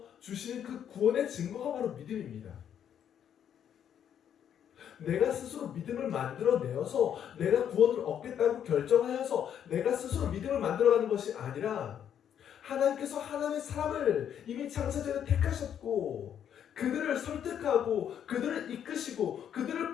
주시는 그 구원의 증거가 바로 믿음입니다. 내가 스스로 믿음을 만들어내어서 내가 구원을 얻겠다고 결정하여서 내가 스스로 믿음을 만들어가는 것이 아니라 하나님께서 하나님의 사람을 이미 창세전에 택하셨고 그들을 설득하고 그들을 이끄시고 그들을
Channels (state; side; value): quieter; right; 9.2 dB